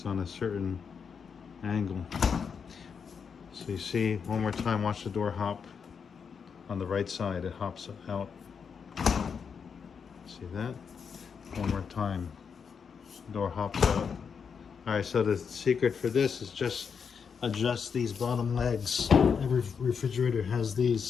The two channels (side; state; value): right; quieter; 6.3 dB